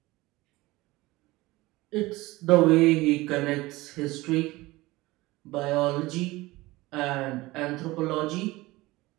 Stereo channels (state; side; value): quieter; left; 20.1 dB